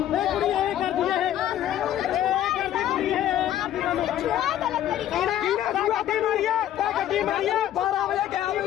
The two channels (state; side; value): quieter; right; 11.8 dB